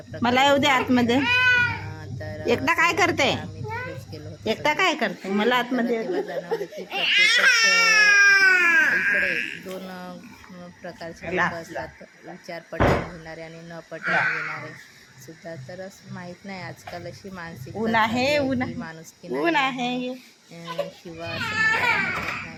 येऊ दे होळी आतमध्ये. असते. तर एकटा असं काय होतं. करते? तर आम्ही तिथेच गेलो होतो एकटा सगळे. काय करते? मला तर आतमध्ये. तेव्हा जाणवलं की प्रत्येकच इकडे दोन प्रकारचे लोक असतात. विचार पटवून घेणारे आणि न पटवून घेणारे सुद्धा. तर असं माहीत नाही, आजकाल अशी ऊन मानसिकता आहे, झाली आहे ऊन की आहे, माणुसकी ऊन नाही आहे. आहे. किंवा असं म्हणायला हरकत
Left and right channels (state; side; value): identical; both; correlation 1.00